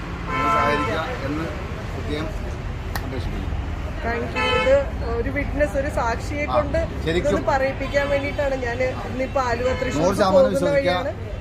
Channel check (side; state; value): both; identical; correlation 1.00